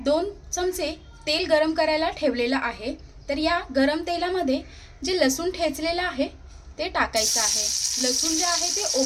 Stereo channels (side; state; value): both; identical; correlation 1.00